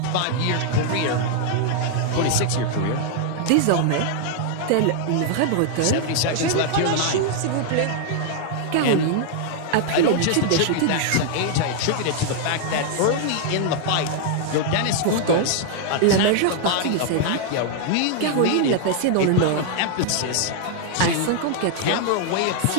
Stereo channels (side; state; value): both; different; correlation 0.00